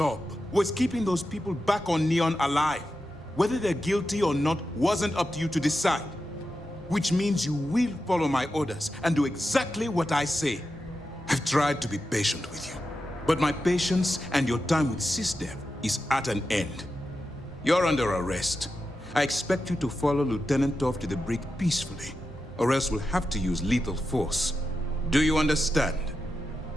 was keeping those people back on Neon alive. Whether they're guilty or not wasn't up to you to decide. Which means you will follow my orders and do exactly what I say. I've tried to be patient with you, but my patience and your time with SysDev is at an end. You're under arrest. I expect you to follow Lieutenant Toff to the brig peacefully, or else we'll have to use lethal force. Do you understand?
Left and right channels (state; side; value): normal; both; correlation 0.89